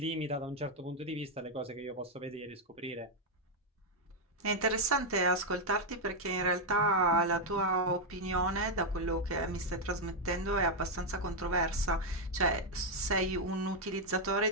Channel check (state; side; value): normal; both; correlation 0.01